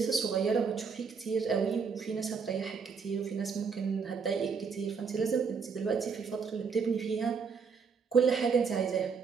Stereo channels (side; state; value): left; quieter; 5.7 dB